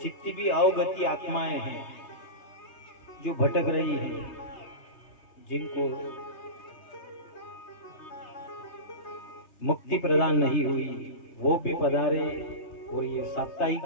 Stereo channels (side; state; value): right; late; 3.3 ms